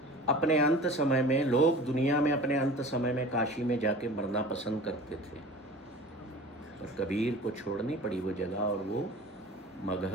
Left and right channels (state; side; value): normal; both; correlation 0.40